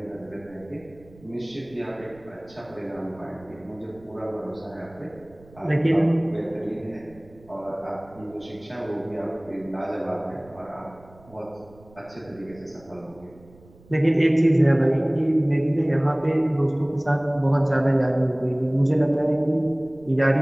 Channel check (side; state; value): right; noise; rumble, 25 dB below the sound